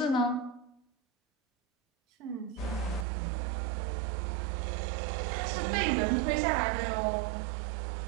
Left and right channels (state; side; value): drops out; left; at 3.1 s